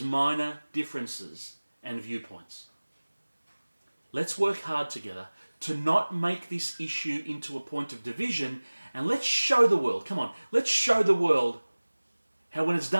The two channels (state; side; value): inverted; both; correlation -1.00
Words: minor differences and viewpoints. Let's work hard together to not make this issue into a point of division, and let's show the world, come on, let's show the world how when it's